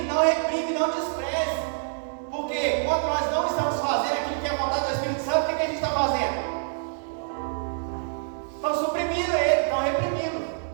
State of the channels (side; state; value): left; silent; digital silence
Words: não reprime, não despreze. Porque quando nós não estamos fazendo aquilo que é a vontade do Espírito Santo, o que a gente está fazendo? Estão suprimindo ele, estão reprimindo,